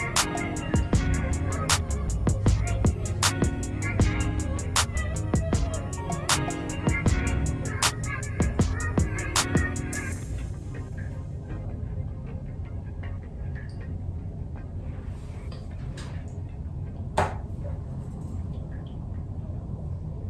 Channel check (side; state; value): both; identical; correlation 1.00